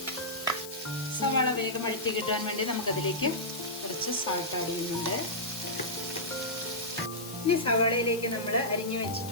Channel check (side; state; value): left; noise; hiss, 13 dB below the sound